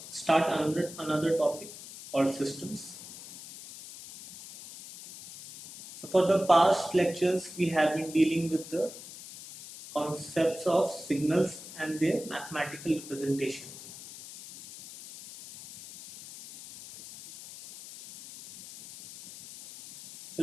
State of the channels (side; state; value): left; noise; hiss, 14 dB below the sound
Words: another topic called systems. So, for the past lectures, we have been dealing with the concepts of signals and their mathematical representation. So,